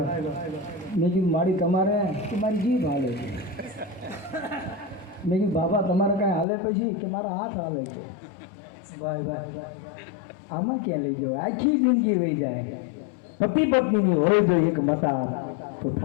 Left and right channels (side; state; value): right; drops out; at 6.5 s